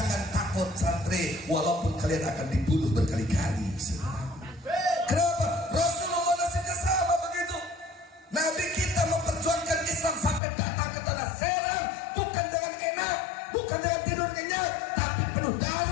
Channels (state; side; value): drops out; right; at 10.4 s